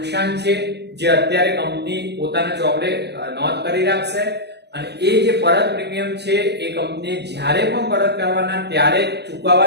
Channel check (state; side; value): late; left; 0.49 ms